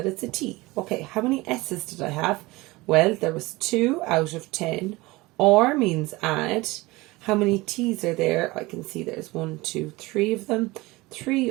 it's a T. Okay, how many S's did I have? Well, there was 2 out of 10. Or means add. How many T's are there? I can see there's 1, 2, 3 of them. 3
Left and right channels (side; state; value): left; quieter; 21.5 dB